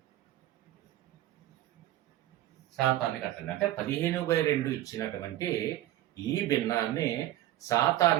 అంటే 15/2 ఇచ్చినటువంటి ఈ భిన్నాన్ని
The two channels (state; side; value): quieter; left; 14.1 dB